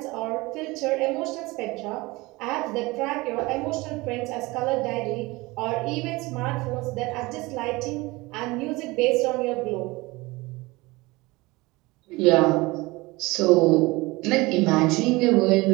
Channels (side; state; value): left; quieter; 22.3 dB